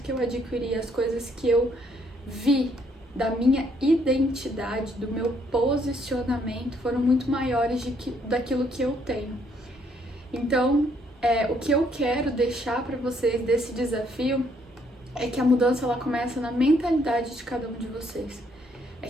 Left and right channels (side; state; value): both; normal; correlation 0.69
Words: que eu adquiri, as coisas que eu vi da minha identidade, do meu posicionamento, foram muito maiores daquilo que eu tenho. Então, o que eu quero deixar para vocês desse desafio é que a mudança ela começa na mentalidade de cada um de vocês. É